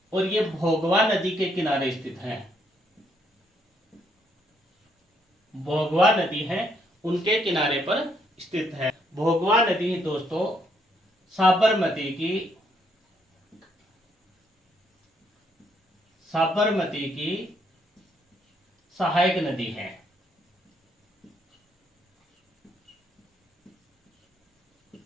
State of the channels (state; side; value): normal; both; correlation 0.72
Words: और ये भोगवा नदी के किनारे स्थित है। भोगवा नदी है, उनके किनारे पर स्थित है। भोगवा नदी दोस्तों साबरमती की सहायक नदी है।